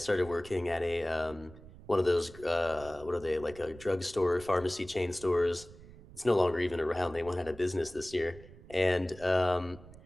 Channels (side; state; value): right; noise; rumble, 19 dB below the sound